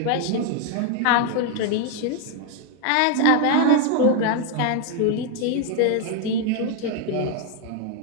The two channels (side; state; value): both; different; correlation 0.01